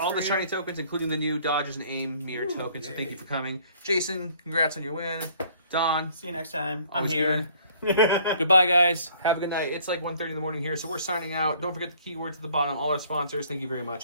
for the you. shiny tokens, including the new Dodges and Aim mirror tokens. So thank you for coming. Jason, congrats on your win. Don. See you next time. I'm always here. good. Goodbye, guys. Have a good night. It's like 1:30 in the morning here, so we're signing out. Don't forget the keywords at the bottom. All our sponsors, thank you very much.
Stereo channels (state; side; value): inverted; both; correlation -0.58